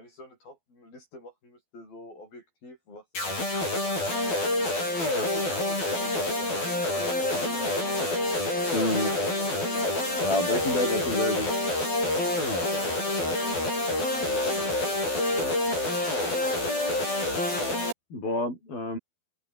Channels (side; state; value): right; late; 12 ms